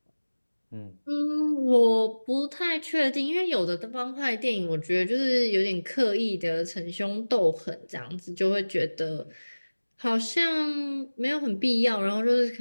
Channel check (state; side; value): inverted; both; correlation -1.00